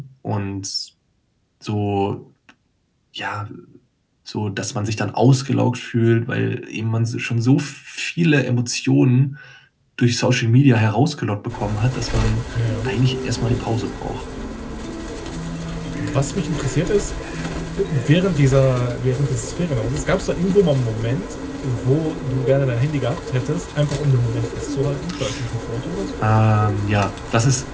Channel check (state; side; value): identical; both; correlation 1.00